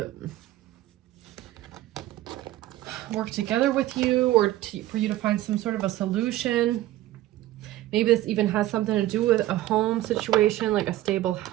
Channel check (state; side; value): quieter; left; 15.1 dB